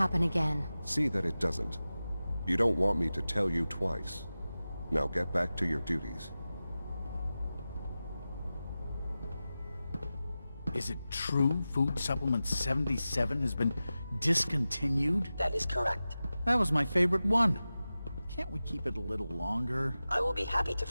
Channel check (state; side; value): inverted; both; correlation -0.95